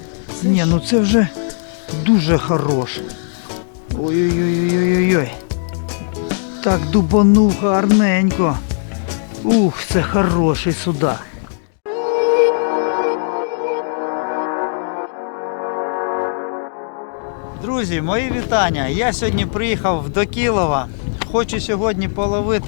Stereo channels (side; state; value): right; silent; digital silence